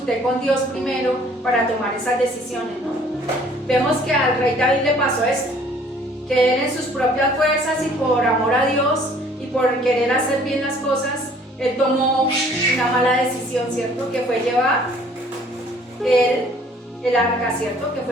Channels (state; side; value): normal; both; correlation 0.56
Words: con Dios primero para tomar esas decisiones, no? Vemos que al rey David le pasó esto, que él en sus propias fuerzas y por amor a Dios y por querer hacer bien las cosas, él tomó una mala decisión, ¿cierto? Que fue llevar el arca, ¿cierto? Que